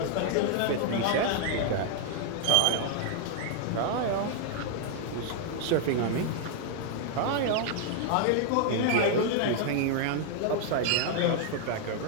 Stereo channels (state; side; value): different; both; correlation 0.00